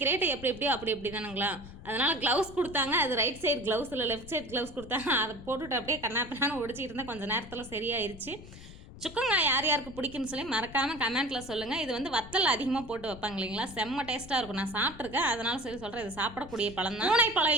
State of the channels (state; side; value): noise; left; rumble, 16 dB below the sound